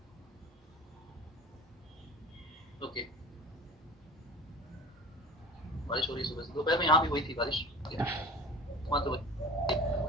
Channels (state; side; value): normal; both; correlation 0.37